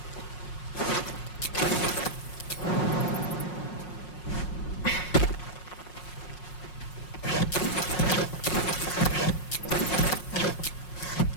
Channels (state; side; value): late; right; 5.5 ms